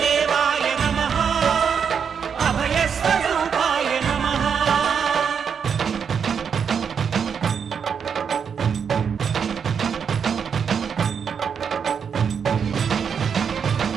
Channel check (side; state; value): left; quieter; 6.9 dB